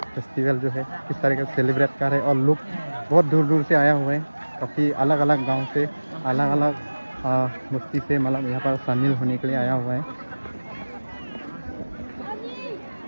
फेस्टिवल जो है किस तरीके से सेलिब्रेट कर रहे हैं। और लोग बहुत दूर दूर से आया हुए हैं काफ़ी अलग अलग गांव से अलग अलग बस्ती से मतलब यहाँ पर शामिल होने के लिए आया हुआ है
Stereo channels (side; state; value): both; inverted; correlation -1.00